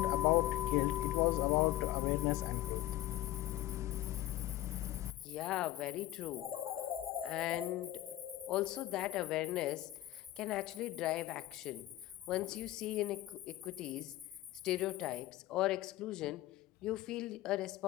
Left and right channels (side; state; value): right; quieter; 15.1 dB